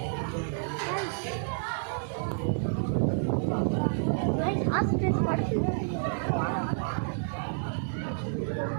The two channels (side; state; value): left; silent; digital silence